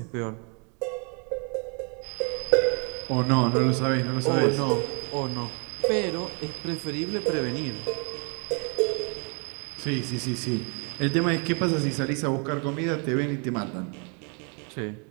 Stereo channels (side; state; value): left; quieter; 36.8 dB